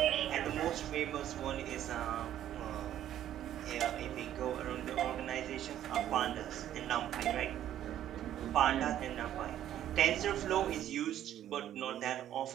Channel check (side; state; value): left; quieter; 11.6 dB